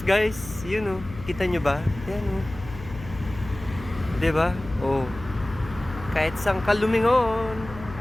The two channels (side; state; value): left; noise; hum, 14 dB below the sound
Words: guys. Yun, oh. Kita nyo ba? Yan, oh. Diba? Oh. Kahit saan ka lumingon.